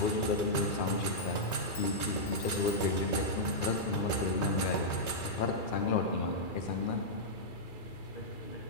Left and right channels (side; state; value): right; late; 2.4 ms